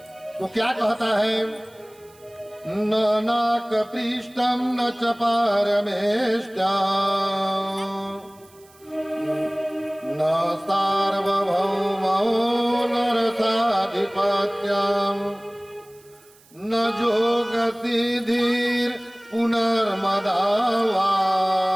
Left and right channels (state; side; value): noise; right; hiss, 28 dB below the sound